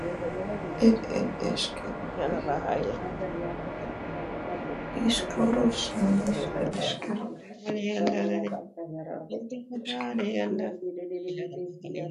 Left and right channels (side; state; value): both; identical; correlation 1.00